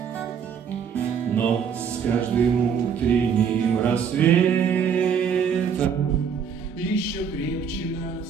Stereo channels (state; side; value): quieter; left; 7.0 dB